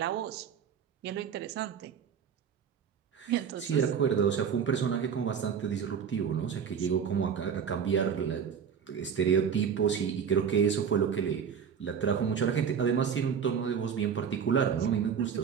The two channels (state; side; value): quieter; left; 7.3 dB